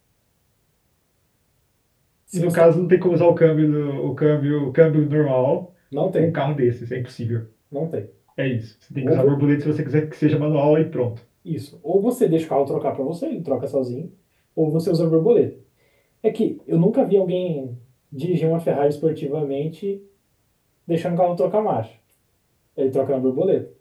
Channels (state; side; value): identical; both; correlation 1.00